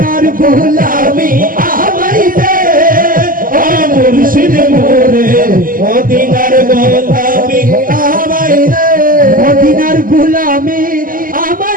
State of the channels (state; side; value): late; left; 0.41 ms